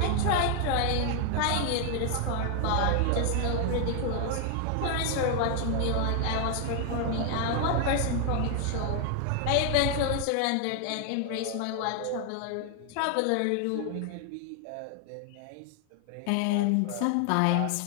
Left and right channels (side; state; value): both; different; correlation 0.00